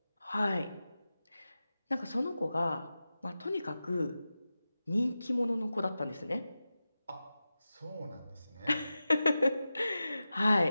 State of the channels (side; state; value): both; inverted; correlation -0.94